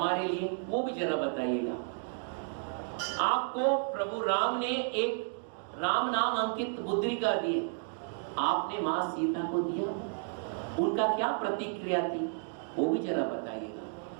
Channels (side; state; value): left; silent; 56 dB below the other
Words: लिए, वो भी जरा बताइएगा। आपको प्रभु राम ने एक राम नाम अंकित मुद्रिका दी, आपने मां सीता को दिया, उनका क्या प्रतिक्रिया थी वो भी जरा